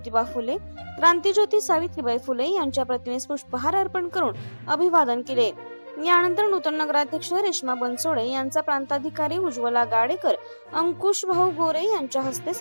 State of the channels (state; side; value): inverted; both; correlation -1.00